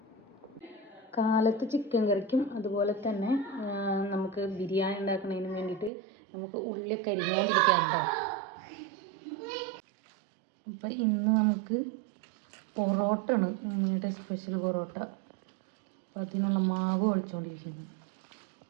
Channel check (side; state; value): left; drops out; at 5.9 s